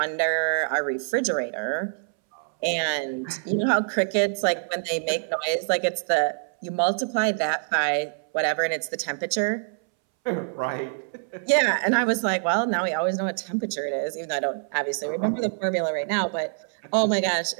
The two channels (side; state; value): left; silent; 61 dB below the other